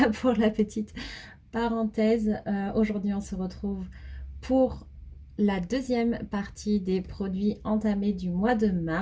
pour la petite parenthèse. Aujourd'hui, on se retrouve pour la deuxième partie des produits entamés du mois de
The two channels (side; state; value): both; identical; correlation 1.00